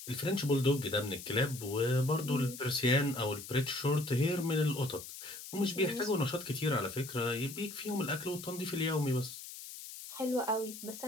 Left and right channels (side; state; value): left; noise; hiss, 12 dB below the sound